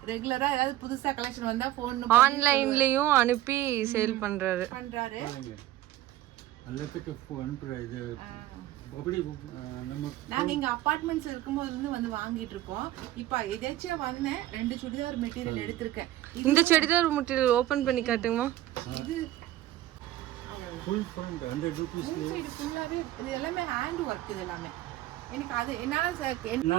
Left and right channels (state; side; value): quieter; left; 14.5 dB